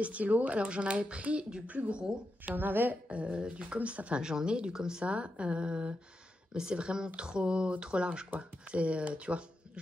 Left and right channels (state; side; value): normal; both; correlation 0.87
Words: stylos, alors j'en avais pris du plus gros. J'en avais du comme ça, enfin j'en ai du comme ça. Mais c'est vraiment trop large quoi. C'est, tu vois,